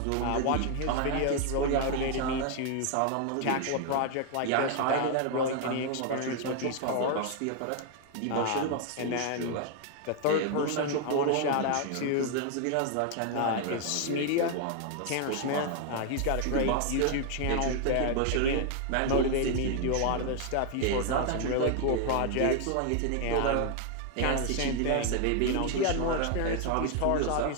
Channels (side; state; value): both; different; correlation 0.00